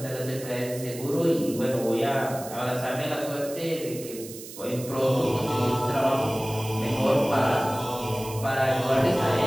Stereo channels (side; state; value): right; noise; hiss, 14 dB below the sound